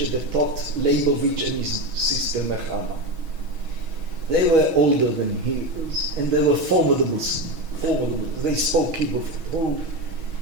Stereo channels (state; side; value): late; left; 6.3 ms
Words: that taught Leibovich and his sister Nechama. They were older than he was, and they were formidable. They spoke Hebrew,